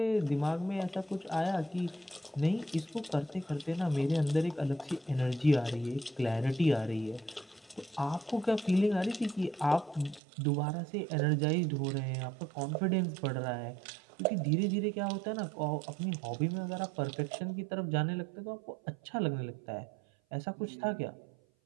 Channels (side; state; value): left; drops out; at 10.2 s